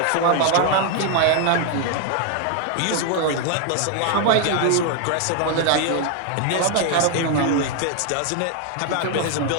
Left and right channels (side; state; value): both; different; correlation 0.00